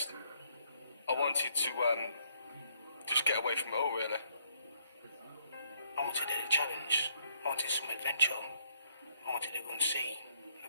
I wanted to, just get away from it all, really. I wanted a challenge. I wanted some adventure. I wanted to go and see a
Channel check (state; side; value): inverted; both; correlation -0.69